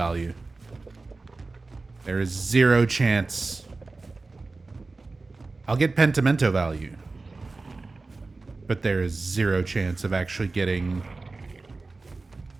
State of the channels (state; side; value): quieter; left; 3.6 dB